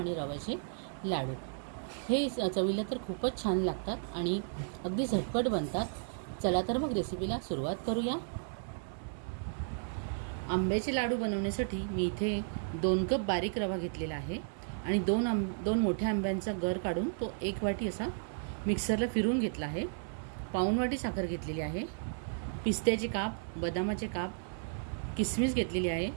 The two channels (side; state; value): left; silent; 55 dB below the other